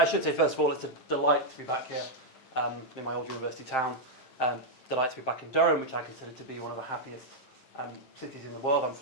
should say, first of all, it's a delight to be back here in my old university town. Delight to be back in Durham, which I consider to be one of the happiest cities in the world. I'm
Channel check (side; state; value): right; late; 9.0 ms